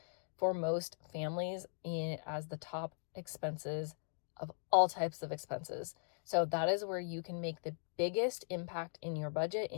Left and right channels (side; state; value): right; silent; digital silence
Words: for most families as the top expenses of all types of expenses. So that is where you can make the biggest impact in your budget,